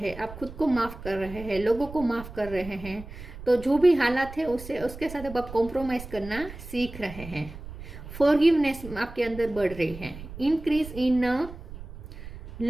आप खुद को माफ़ कर रहे हैं, लोगों को माफ़ कर रहे हैं। तो जो भी हालात है उसके साथ अब आप कॉम्प्रोमाइज़ करना सीख रहे हैं। फॉरगिवनेस आपके अंदर बढ़ रही है। Increase in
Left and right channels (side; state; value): right; noise; rumble, 13 dB below the sound